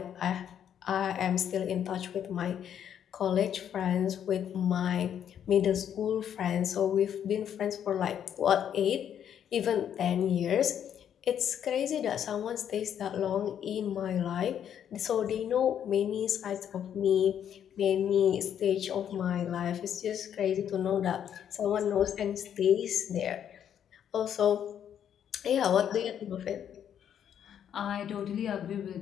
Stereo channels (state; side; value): quieter; right; 9.3 dB